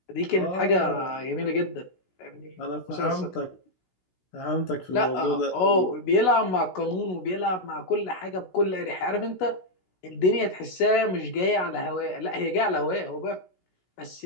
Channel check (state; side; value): late; right; 16 ms